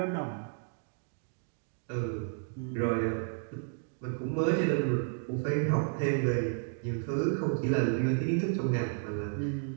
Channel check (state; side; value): silent; left; digital silence